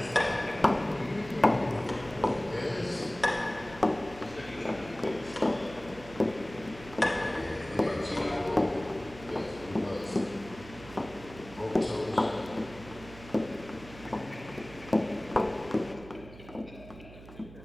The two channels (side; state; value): right; noise; hum, 17 dB below the sound